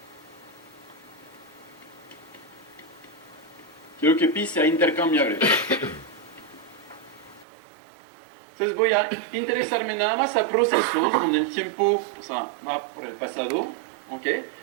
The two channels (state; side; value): drops out; left; at 7.5 s